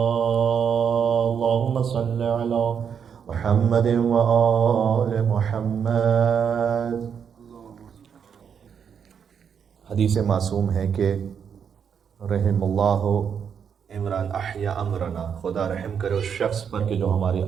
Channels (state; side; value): quieter; left; 7.4 dB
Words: اللهم صل على محمد وآل محمد. حدیث معصوم ہے کہ رحم اللہ عمران احیا امرنا، خدا رحم کرے اس شخص پر کہ جو ہمارے